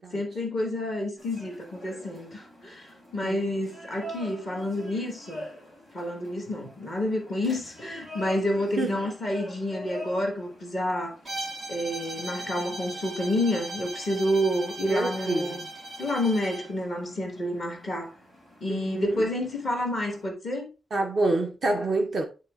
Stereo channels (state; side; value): normal; both; correlation 0.79